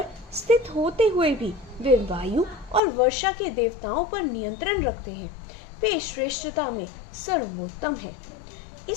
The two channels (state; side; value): drops out; right; at 2.8 s